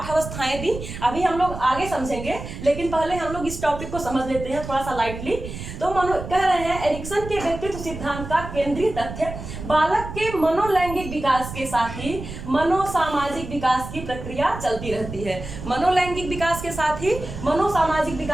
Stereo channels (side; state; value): right; noise; rumble, 10 dB below the sound